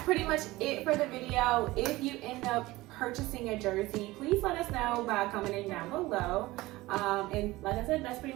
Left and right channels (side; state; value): left; quieter; 19.2 dB